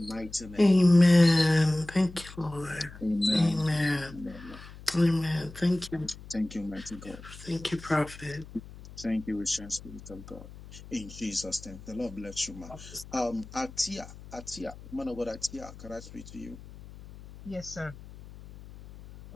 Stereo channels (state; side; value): noise; left; hum, 17 dB below the sound